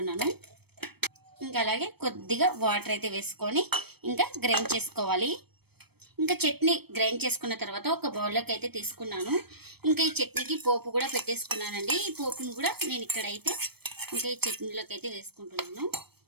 ఇంకా అలాగే కొద్దిగా వాటర్ అయితే వేసుకొని ఇంకా గ్రైండ్ చేసుకోవాలి. ఇంకా చట్నీ గ్రైండ్ చేసుకున్న తర్వాత ఒక బౌల్లోకి అయితే తీసుకున్నాను. ఇంకా ఈ చట్నీకి పోపు కూడా పెట్టేసుకున్నానండి. ఈ పోపును కూడా నేను ఇక్కడైతే ఇంకా ఈ చట్నీలోకి అయితే వేసుకుంటున్నాను.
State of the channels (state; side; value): late; left; 0.97 ms